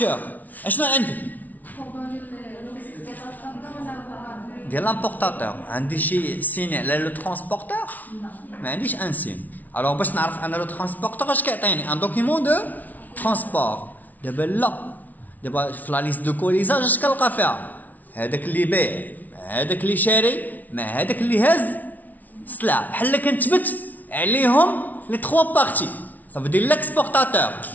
qu'est-ce que عندي؟ ديال l'importateur. عندي شي سين على لو ترانسبورتور؟ ما عنديش ان سين. الوغ باش نعرف انا لو ترانسبورتور اش كيعطيني؟ ان دوكيمون دو ترانسبور. دابا لا. دابا في لا ليست دو كوليزاج اش كنلقى فيها؟ هذاك اللي بايع، هذاك اللي شاري، مع هذاك اللي هاز السلعه. بحال كنتبت عليهم لي 3 بارتي. Ça veut dire l'exportateur,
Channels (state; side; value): late; right; 0.077 ms